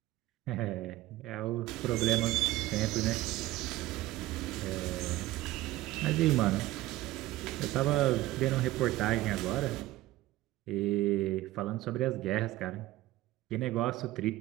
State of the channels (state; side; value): quieter; left; 16.8 dB